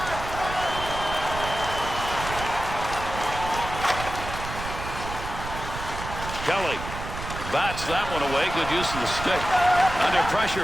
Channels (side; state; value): right; noise; rumble, 8 dB below the sound